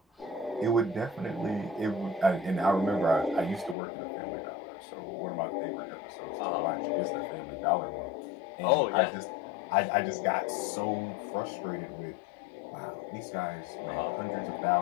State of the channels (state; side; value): drops out; right; at 3.8 s